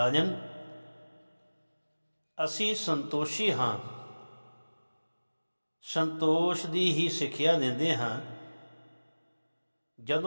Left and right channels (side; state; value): both; inverted; correlation -1.00